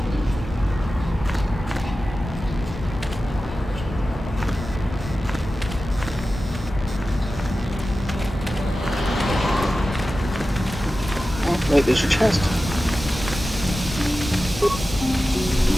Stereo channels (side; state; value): both; normal; correlation 0.94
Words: Wait, there's a chest.